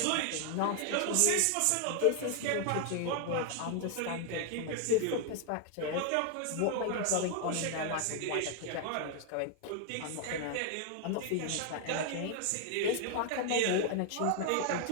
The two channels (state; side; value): different; both; correlation 0.00